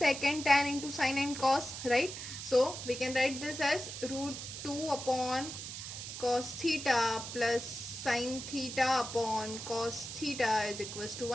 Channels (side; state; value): right; noise; hiss, 8 dB below the sound